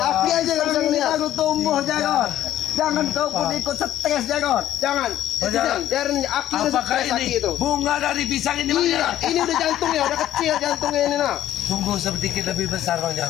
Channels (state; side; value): quieter; right; 12.5 dB